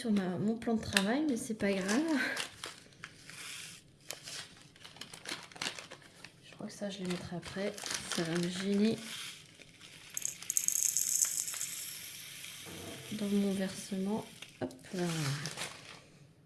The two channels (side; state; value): both; identical; correlation 1.00